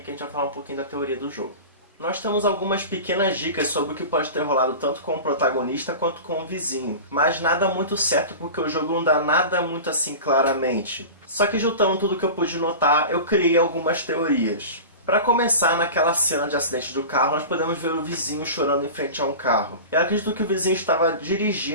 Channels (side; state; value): both; inverted; correlation -0.32